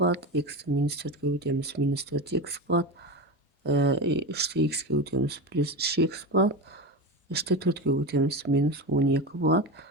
x минус 4-ке көбейтеміз, минус 4x болады, 3-те x ке көбейтеміз, плюс 3x болады, 3-те 4-ке көбейтеміз, минус 12 болады.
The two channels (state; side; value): normal; both; correlation 0.22